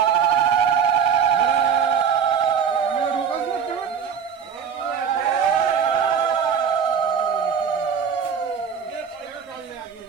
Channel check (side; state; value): left; quieter; 7.0 dB